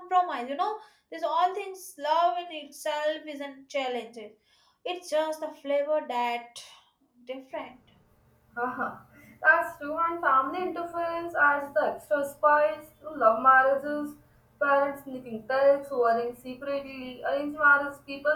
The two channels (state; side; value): identical; both; correlation 1.00